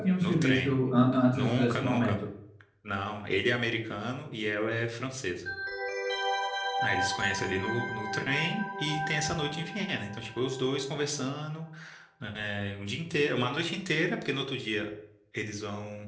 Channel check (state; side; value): identical; both; correlation 1.00